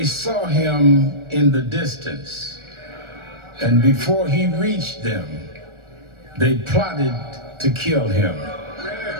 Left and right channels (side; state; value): left; late; 1.4 ms